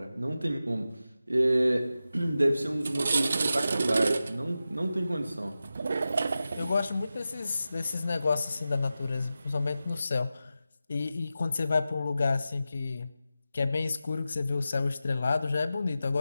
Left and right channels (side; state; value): both; inverted; correlation -0.92